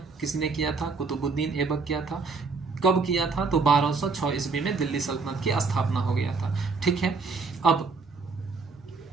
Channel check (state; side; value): quieter; left; 4.4 dB